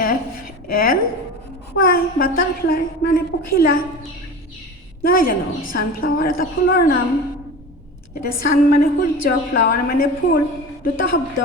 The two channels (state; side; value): normal; both; correlation 0.32